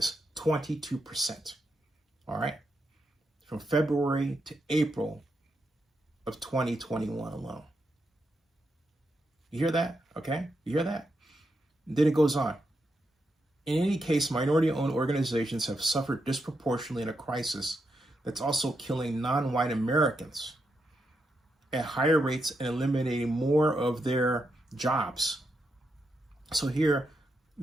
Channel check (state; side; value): normal; both; correlation 0.83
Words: 22%. All right? From February to April of 2021 alone. You hear that? Okay? You hear that? And then it goes on. In any case, minority-owned organizations have suffered disproportionately in a crisis that's also killing non-white Americans at higher rates and eliminating more of their jobs. So here,